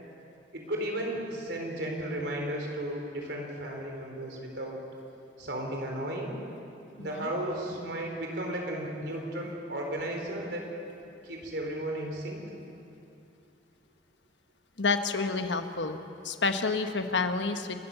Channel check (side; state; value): both; normal; correlation 0.16